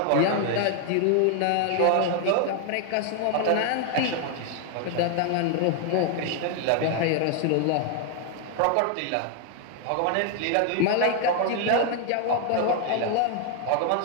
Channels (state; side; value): different; both; correlation 0.00